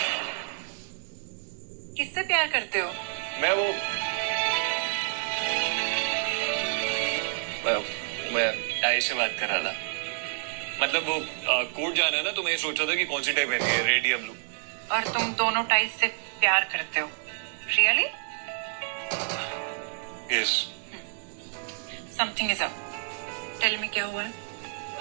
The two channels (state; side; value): silent; left; 59 dB below the other